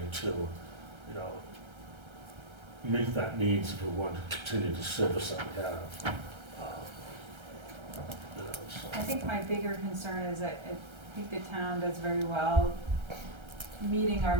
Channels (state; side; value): late; left; 1.3 ms